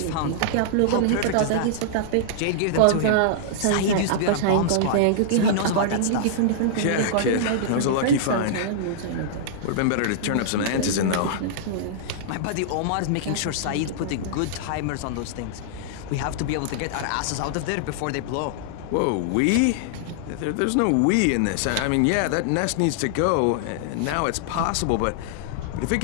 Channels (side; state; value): both; different; correlation -0.01